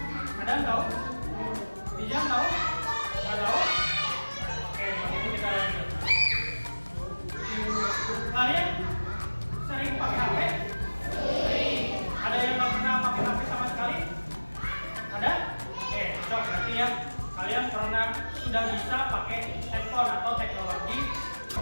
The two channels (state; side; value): inverted; both; correlation -1.00